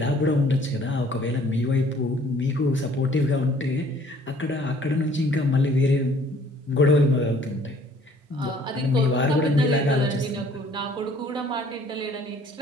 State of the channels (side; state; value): both; normal; correlation 0.57